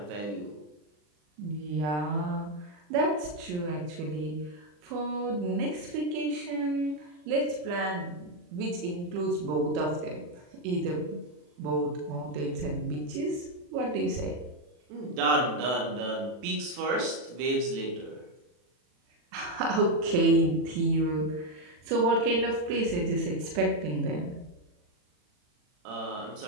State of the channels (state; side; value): late; left; 40 ms